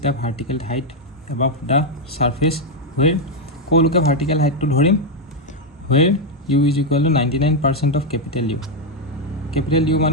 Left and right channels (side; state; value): both; normal; correlation 0.01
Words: the vertical height above the surface where, ক'লৈকে ভাৰ্টিকেল হাইটটো ধৰিম? Where u is equal to 99% of capital u. Capital u